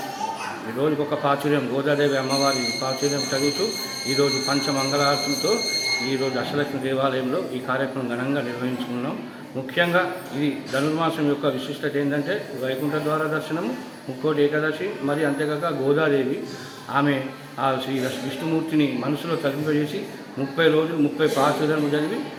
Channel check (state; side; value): identical; both; correlation 1.00